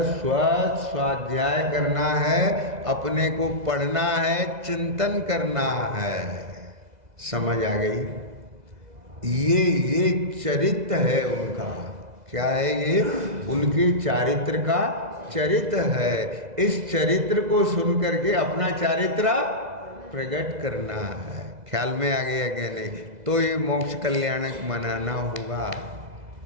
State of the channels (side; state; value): left; late; 2.0 ms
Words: स्वाध्याय करना है, अपने को पढ़ना है, चिंतन करना है। समझ आ गई? ये चरित्र है उनका। क्या है ये? उनके चारित्र का चरित्र है। इस चरित्र को सुन करके अपना चारित्र प्रकट करना है। ख्याल में आ गया कि नहीं? तो ये मोक्ष कल्याणक मनाना होगा।